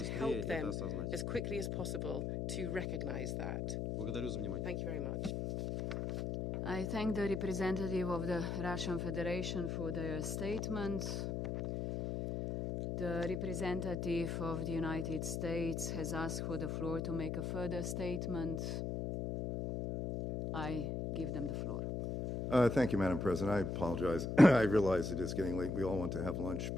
help это them осознать. as quickly as possible to recognize that. Благодарю за внимание. Thank you very much. I thank the representative of the Russian Federation for their statement. The representative of the United States has asked for the floor to make a further statement. I give them the floor. Thank you, Madam President. I apologize. I realize it is getting late. We all want to have lunch,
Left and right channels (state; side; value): noise; left; hum, 2 dB below the sound